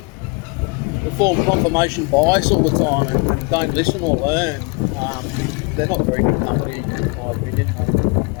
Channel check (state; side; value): quieter; right; 29.7 dB